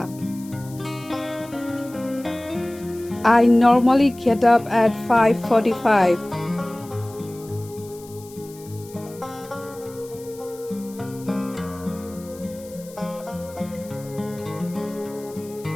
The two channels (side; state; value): left; noise; hiss, 21 dB below the sound